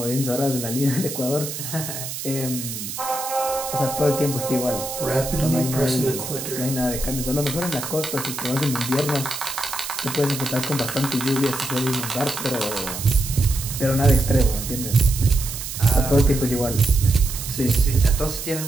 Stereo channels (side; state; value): right; noise; hiss, 7 dB below the sound